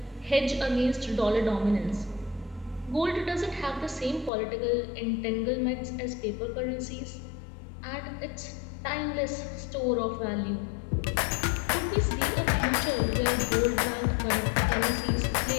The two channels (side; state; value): right; drops out; at 4.3 s